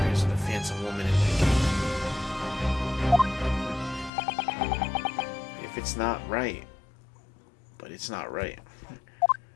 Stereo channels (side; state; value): right; drops out; at 4.1 s